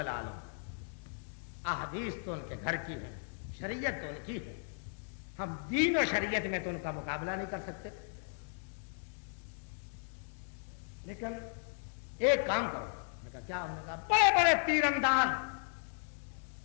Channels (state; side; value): silent; right; digital silence